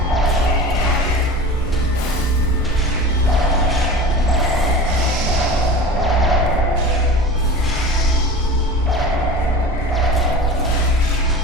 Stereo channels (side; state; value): both; normal; correlation 0.35